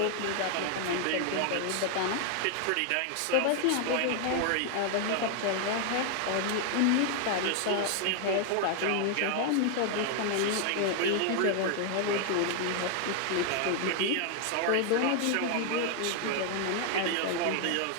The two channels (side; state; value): both; different; correlation 0.00